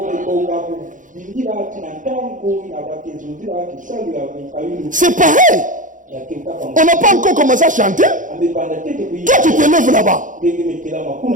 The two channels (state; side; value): late; left; 0.38 ms